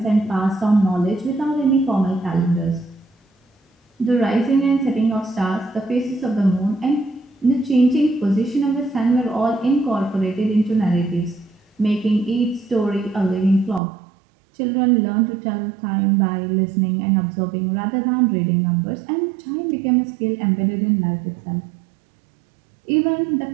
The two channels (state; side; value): drops out; left; at 13.8 s